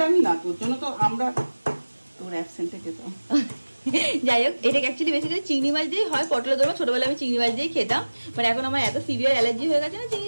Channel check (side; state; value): both; inverted; correlation -1.00